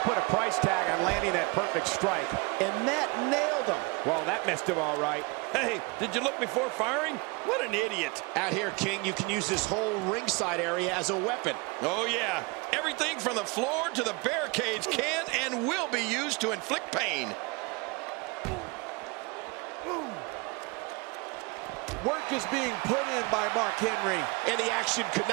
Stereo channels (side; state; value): left; quieter; 28.0 dB